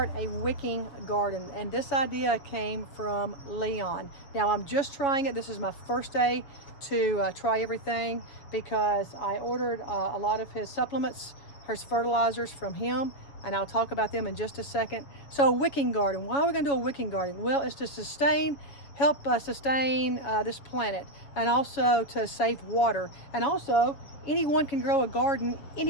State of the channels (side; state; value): right; late; 7.3 ms